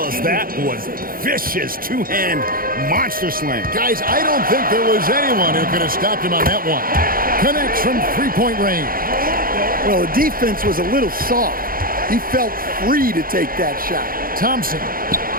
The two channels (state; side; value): late; left; 0.42 ms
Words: that was vicious two-hand monster slam. Guys, I don't think there was anyone who could have stopped him on that one. Connects from three-point range. Well, the defense was a little soft. He felt free to take that shot. Thompson.